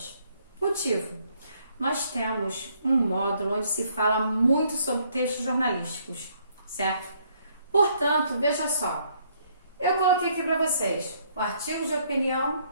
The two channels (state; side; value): inverted; both; correlation -0.68